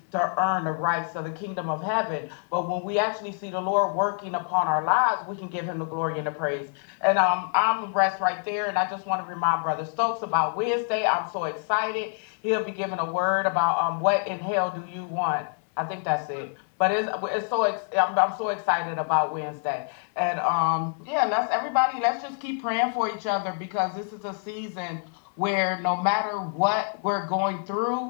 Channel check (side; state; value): right; silent; 58 dB below the other